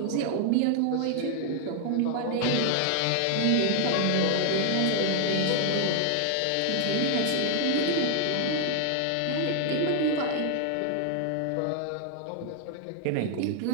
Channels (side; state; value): both; different; correlation 0.00